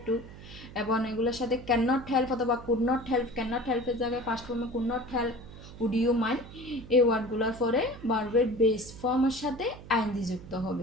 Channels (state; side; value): noise; right; hum, 16 dB below the sound